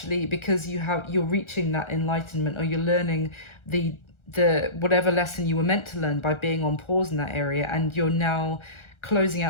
because you're reaching that enlightenment, or you're learning the whatever lesson you were meant to learn by being on pause in that area, and you're now closing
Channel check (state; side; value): late; right; 1.4 ms